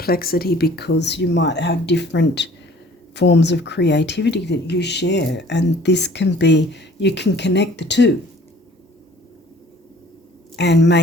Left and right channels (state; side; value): normal; both; correlation 0.52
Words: because you might have different forms of creativity that you share, and this can be, you can connect the two and